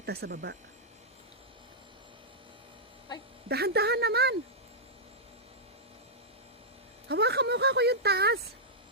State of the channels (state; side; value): normal; both; correlation -0.10